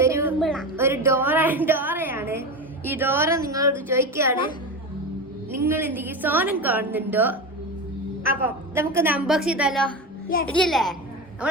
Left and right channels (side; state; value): both; normal; correlation 0.22